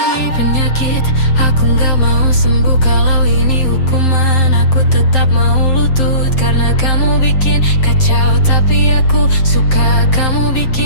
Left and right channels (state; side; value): late; right; 7.6 ms